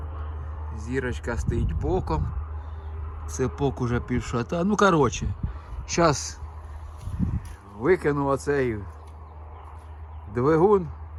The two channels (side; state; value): both; identical; correlation 1.00